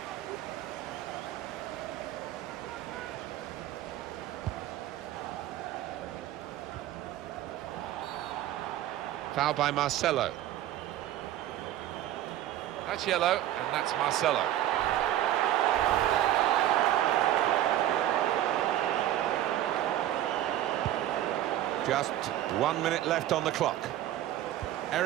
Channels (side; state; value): left; quieter; 12.9 dB